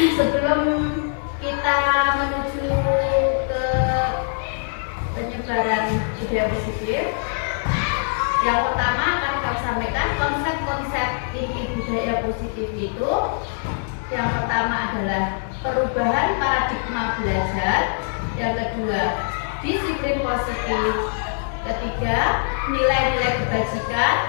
sebelum kita menuju ke penyebaran budaya positif, yang pertama akan kami sampaikan konsep-konsep inti budaya positif itu. Yang pertama adalah perubahan paradigma belajar. Yang kedua, disiplin positif. Ketiga, nilai-nilai kebajikan.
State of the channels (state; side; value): silent; right; 64 dB below the other